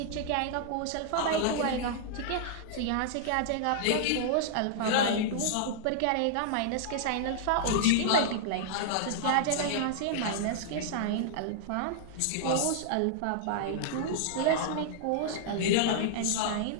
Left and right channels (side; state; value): both; different; correlation -0.01